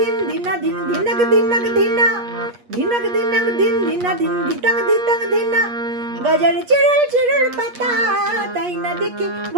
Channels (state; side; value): late; left; 8.4 ms